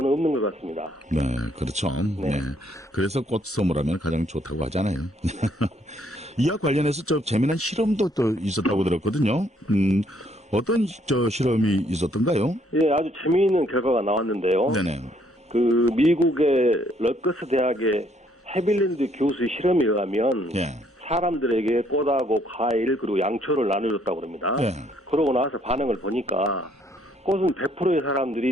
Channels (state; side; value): normal; both; correlation 0.67